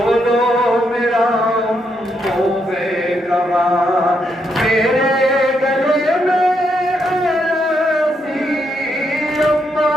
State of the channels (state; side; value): normal; both; correlation 0.78